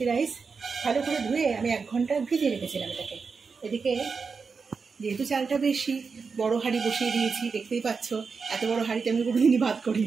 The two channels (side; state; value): left; quieter; 5.1 dB